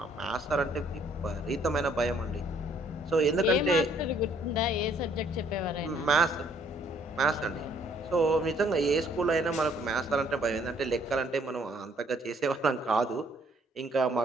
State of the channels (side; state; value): both; normal; correlation 0.64